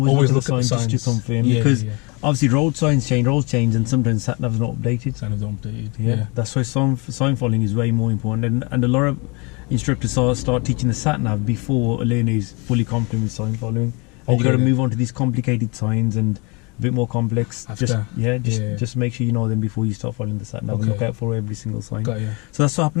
look at the sign just to confirm, because obviously roads change, and sometimes sat nav's not updated. Sat nav's not updated. Yeah. That's why sign following is way more important, and a lot of instructors start teaching the sat nav before a learner is fully competent with sign following. And you got to move on to these complicated signs and a bit more complex. After. Just make sure you know them before you start following the sat nav. Okay. Look out for every single sign. Got you. So that's what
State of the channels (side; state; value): right; quieter; 29.3 dB